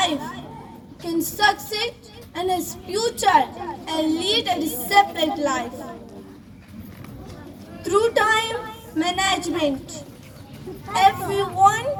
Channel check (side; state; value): both; identical; correlation 1.00